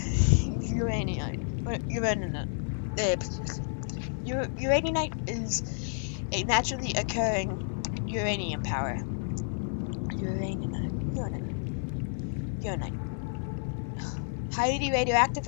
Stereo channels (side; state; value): right; silent; digital silence